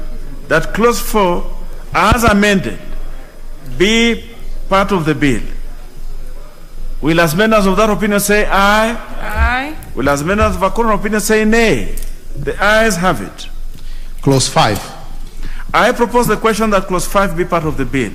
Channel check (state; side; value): identical; both; correlation 1.00